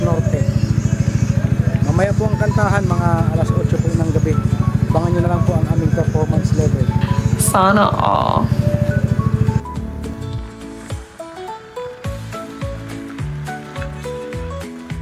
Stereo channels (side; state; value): both; identical; correlation 1.00